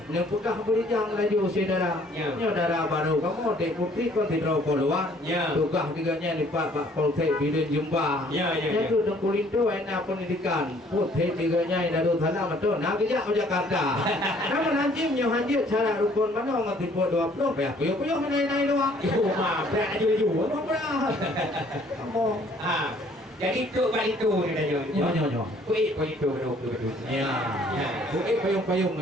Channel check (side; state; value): both; normal; correlation 0.59